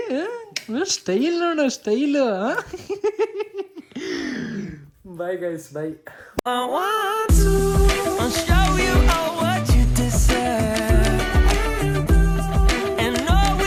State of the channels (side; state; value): both; identical; correlation 1.00